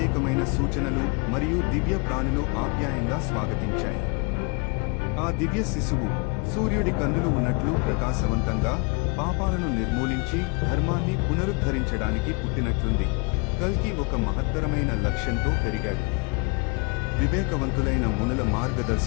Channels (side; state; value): right; quieter; 31.8 dB